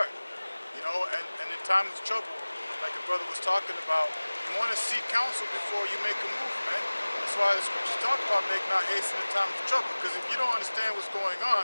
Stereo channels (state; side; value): inverted; both; correlation -1.00